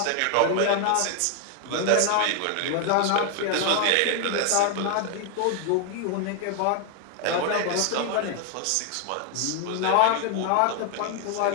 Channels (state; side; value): different; both; correlation 0.00